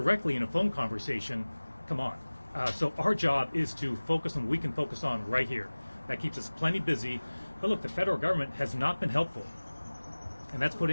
in a phone conversation, come on. So our job is to focus on what we can focus on right here. That keeps us plenty busy. But look, the federal government has not been helpful, and that's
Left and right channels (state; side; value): inverted; both; correlation -1.00